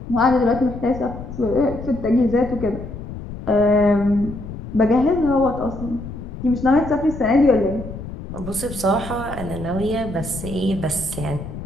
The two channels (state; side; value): noise; left; rumble, 10 dB below the sound